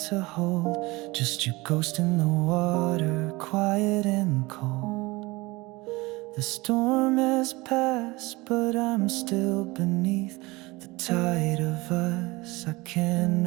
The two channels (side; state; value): left; quieter; 22.5 dB